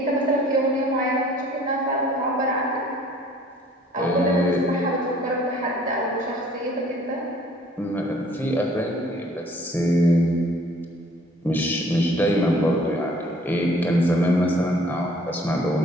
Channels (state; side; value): normal; both; correlation 0.56